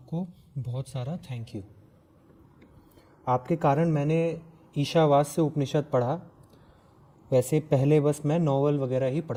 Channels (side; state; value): both; identical; correlation 1.00